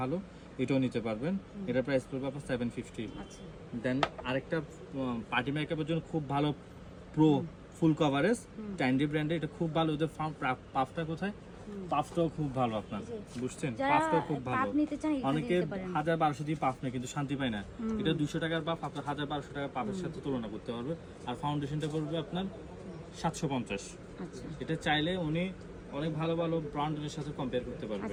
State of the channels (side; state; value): both; identical; correlation 1.00